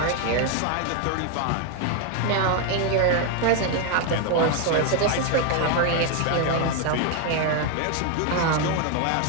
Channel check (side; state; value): both; different; correlation 0.01